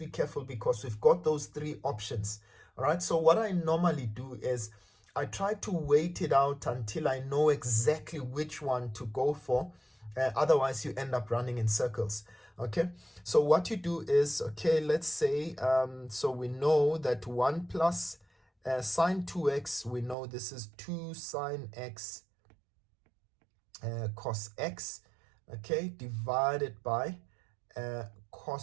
careful because we've got those 3 options. All right, so what I normally do is I try to wait it out until I know exactly which one to go for. Otherwise, you end up running in circles. Okay, so what you do is, let's say, so we know that 1 plus sine 2x, we know this is 2 sine x cos x, divided by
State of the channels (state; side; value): drops out; left; at 20.2 s